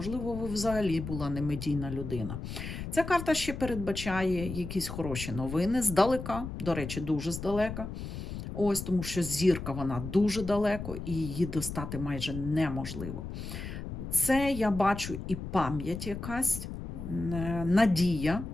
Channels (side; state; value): left; noise; rumble, 8 dB below the sound